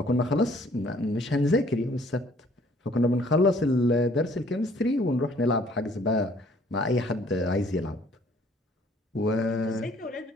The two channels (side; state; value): both; normal; correlation 0.58